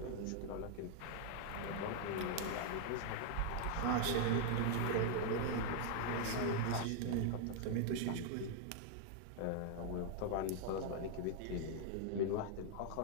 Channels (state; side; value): different; both; correlation 0.00